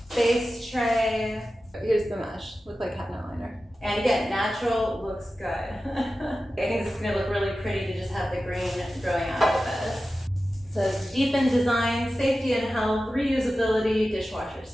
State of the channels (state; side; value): normal; both; correlation 0.94